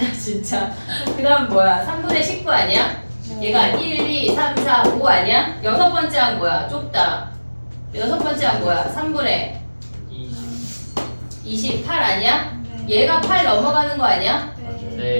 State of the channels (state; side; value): inverted; both; correlation -1.00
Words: 진짜. 그 다음 뭐야? 3분의 19 아니야? 얘가 1, 2, 3, 4, 5 아니야? 여섯 번째 한 뭐야? 좁다. 여섯 번째 한 뭐야? 3분의 28 아니야? 얘가 8 넘어가는 거 아니야?